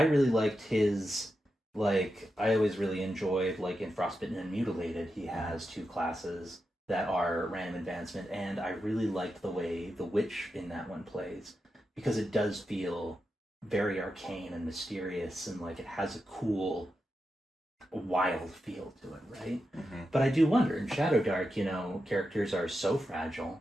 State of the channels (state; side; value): normal; both; correlation 0.88